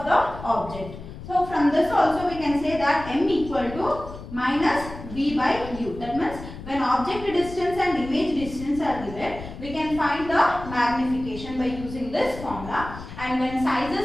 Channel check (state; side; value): noise; left; rumble, 13 dB below the sound